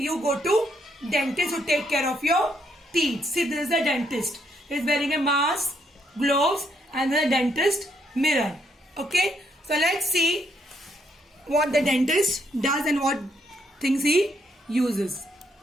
dentist to take care of your teeth. See, this is a dentist. He is wearing a mask, gloves, and then a dentist mirror. Okay, so let's see what the dentist does and what things he uses.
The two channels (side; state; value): both; normal; correlation 0.73